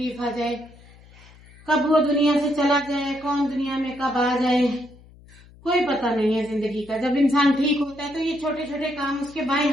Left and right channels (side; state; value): left; noise; hum, 24 dB below the sound